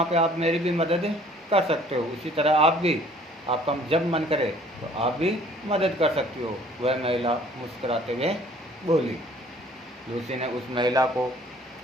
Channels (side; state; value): both; normal; correlation 0.55